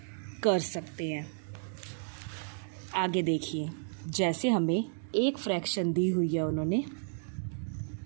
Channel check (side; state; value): left; silent; digital silence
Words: कर सकते हैं। आगे देखिए, जैसे हमें एक फ्रैक्शन दी हुई है उन्होंने